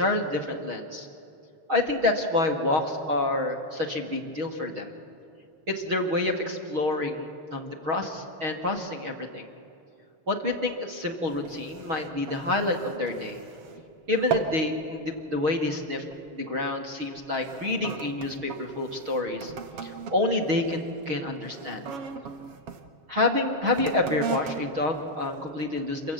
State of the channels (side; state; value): left; late; 7.2 ms